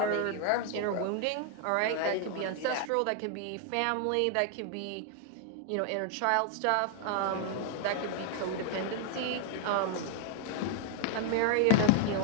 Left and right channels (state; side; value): different; both; correlation 0.00